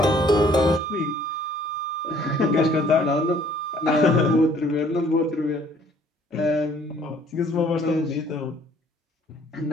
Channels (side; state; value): both; normal; correlation 0.59